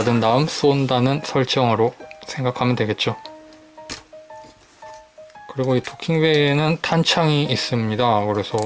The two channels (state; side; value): identical; both; correlation 1.00